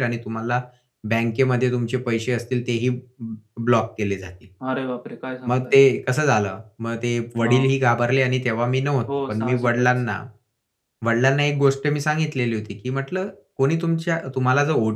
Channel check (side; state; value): both; identical; correlation 1.00